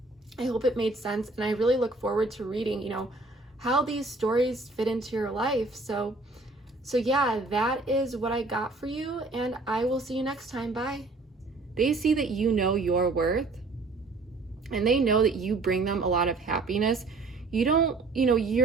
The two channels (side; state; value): left; quieter; 3.4 dB